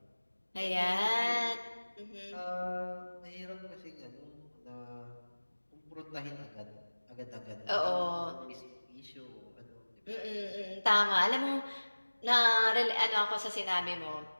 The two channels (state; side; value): inverted; both; correlation -1.00